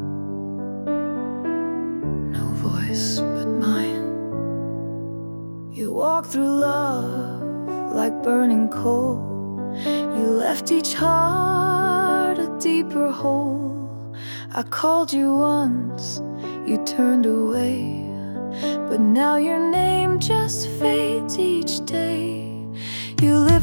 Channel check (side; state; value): both; inverted; correlation -1.00